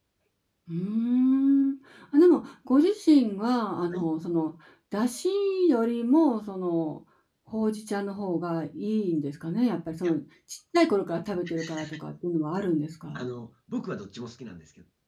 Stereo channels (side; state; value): both; identical; correlation 1.00